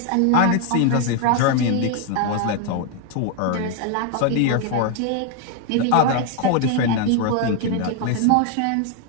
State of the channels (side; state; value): both; different; correlation 0.00